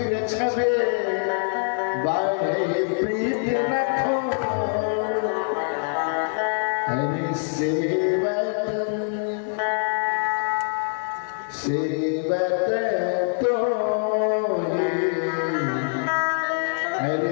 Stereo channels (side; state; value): right; silent; digital silence